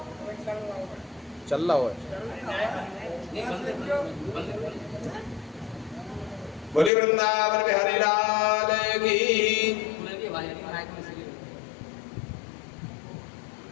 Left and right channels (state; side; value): drops out; right; at 6.9 s